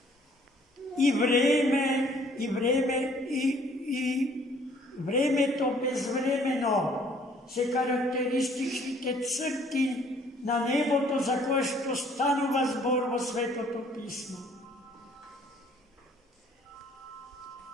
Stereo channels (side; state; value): both; normal; correlation 0.59